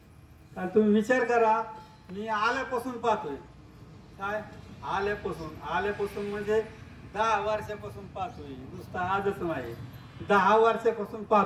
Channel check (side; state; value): both; identical; correlation 1.00